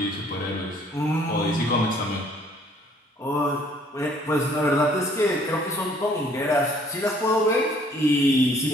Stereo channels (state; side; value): normal; both; correlation 0.60